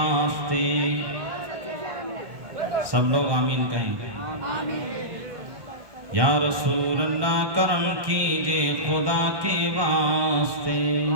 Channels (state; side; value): late; left; 1.2 ms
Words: سب لوگ آمین کہیں. یا رسول اللہ کرم کیجئے خدا کے واسطے.